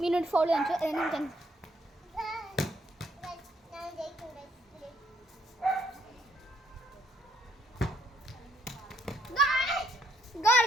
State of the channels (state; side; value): normal; both; correlation 0.70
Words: മീനോട് ഫോളോ കാണിച്ചു. Goal